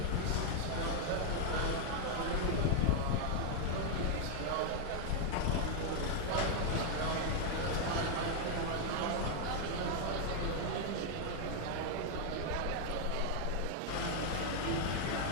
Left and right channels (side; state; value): both; different; correlation 0.00